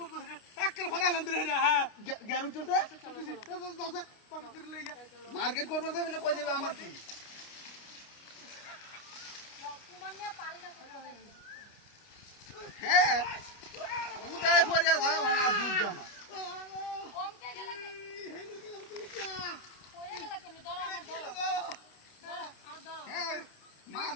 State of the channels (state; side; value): late; right; 29 ms